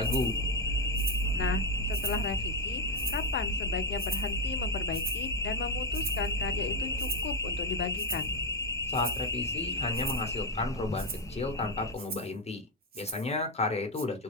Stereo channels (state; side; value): normal; both; correlation 0.05